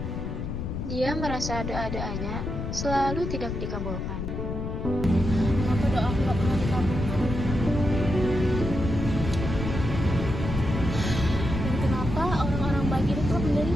Dia merasa doa-doanya selalu tidak dikabulkan. Kenapa doa aku gak pernah dikabulkan? Dan kenapa orang-orang baik itu telah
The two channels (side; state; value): left; noise; rumble, 4 dB below the sound